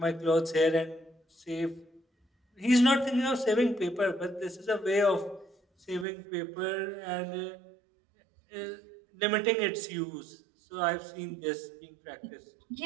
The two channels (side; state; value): left; drops out; at 6.1 s